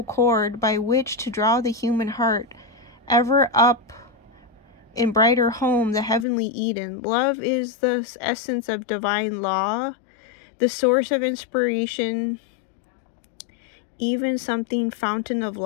cord by which to draw the human heart ever up in brighter home, the heavenly Eden. Love is the essence of divine law, the source of inspiration, even something fountain of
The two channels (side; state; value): right; drops out; at 6.2 s